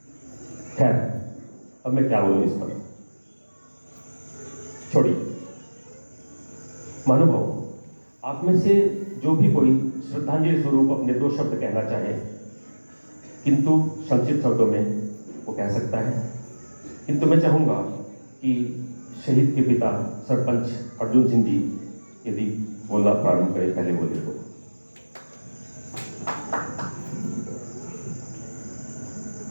खैर, अब मैं क्या बोलूं इस पर, छोड़िए। महानुभाव, आप में से जो भी कोई श्रद्धांजलि स्वरूप अपने दो शब्द कहना चाहे, किंतु संक्षिप्त शब्दों में वो कह सकता है। किंतु मैं चाहूंगा कि शहीद के पिता सरपंच अर्जुन सिंह जी यदि बोलना प्रारंभ करें, पहले बोले तो।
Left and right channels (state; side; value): inverted; both; correlation -1.00